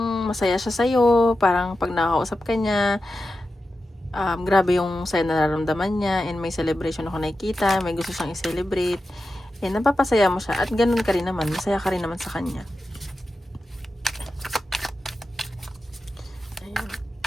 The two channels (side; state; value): both; normal; correlation 0.91